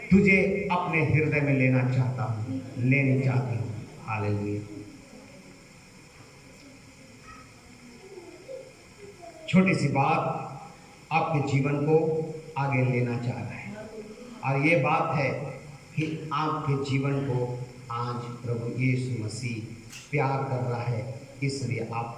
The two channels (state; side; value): identical; both; correlation 1.00